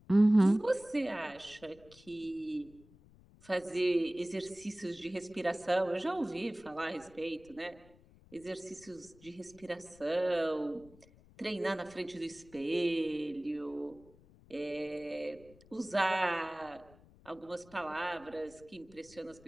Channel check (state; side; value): noise; left; rumble, 25 dB below the sound